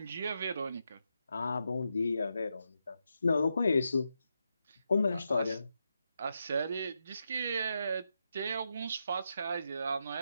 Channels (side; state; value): both; inverted; correlation -0.85